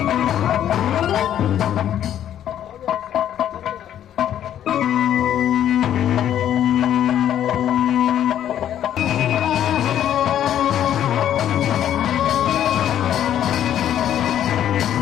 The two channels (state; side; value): quieter; right; 10.7 dB